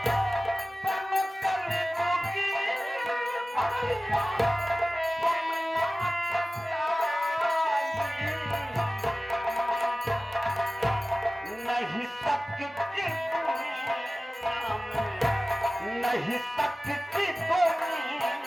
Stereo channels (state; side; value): normal; both; correlation 0.97